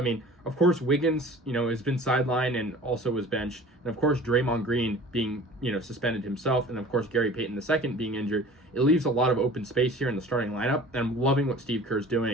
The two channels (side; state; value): both; normal; correlation 0.44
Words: mean, of course, Wiggins, has been sidelined and also was benched. And, of course, Draymond Green being, suspended himself. And, of course, Gary Payton II being injured. It leaves a lot of open space here in the starting lineup. And I'm loving what Steve Kerr's